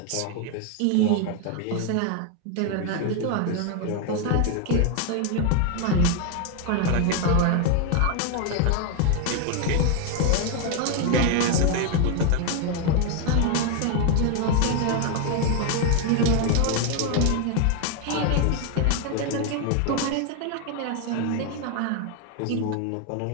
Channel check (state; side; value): different; both; correlation 0.01